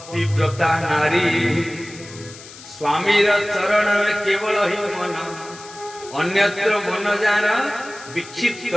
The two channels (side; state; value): left; noise; hiss, 17 dB below the sound